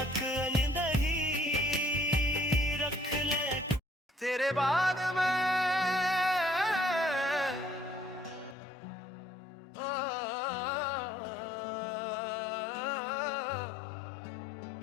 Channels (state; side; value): drops out; right; at 8.6 s